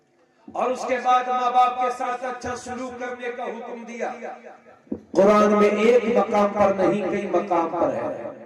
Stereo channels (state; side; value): identical; both; correlation 1.00